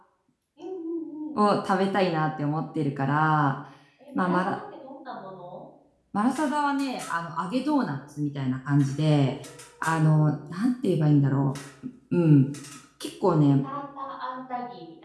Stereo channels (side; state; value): both; identical; correlation 1.00